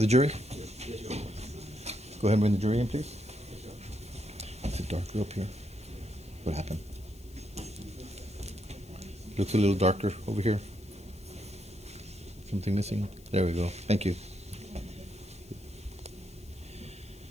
jury? Go ahead and bring the jury in, please. It's a darker up here. What happened? Looks a little darker over here. Something missing? There we go. Thank you.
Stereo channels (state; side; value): noise; left; hiss, 25 dB below the sound